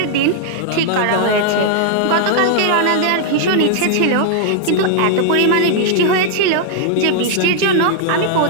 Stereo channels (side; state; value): both; different; correlation 0.00